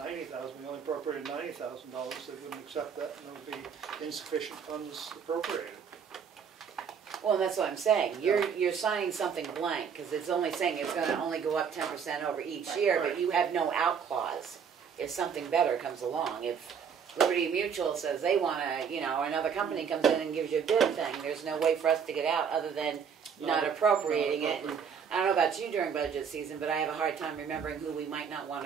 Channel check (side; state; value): left; quieter; 7.0 dB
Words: we only appropriated $90,000, they wouldn't accept that, and there would be insufficient funds appropriated. Well, and that's what I'm saying, you're signing something blank, because it's only saying it's gonna only go up 10% over each year, but you have no out clause if something better comes along. If Liberty Mutual says they wanna, you know, another company comes in and gives you a bid thing, there's no way for us to get out other than not appropriating it. I don't know about you during budget season, but I have a hard time remembering who we might not want